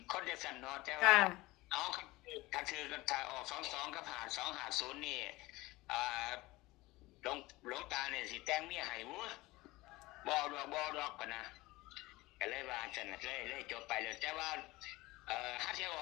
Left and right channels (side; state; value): right; quieter; 20.3 dB